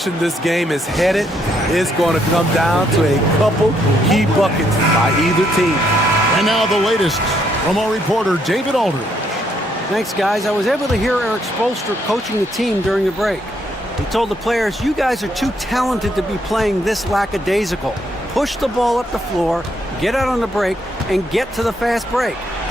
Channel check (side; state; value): both; normal; correlation 0.73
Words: this game is headed is going to come down to a couple key buckets by either team. And now the latest from our reporter, David Aldridge. Thanks, guys. I was able to hear Eric Spoelstra coaching the team during the break. He told the players, you guys are too talented to be playing this lackadaisical. Push the ball up the floor, get out on the break, and get to the fast break.